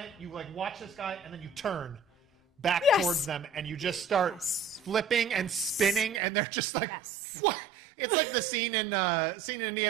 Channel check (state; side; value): drops out; left; at 6.2 s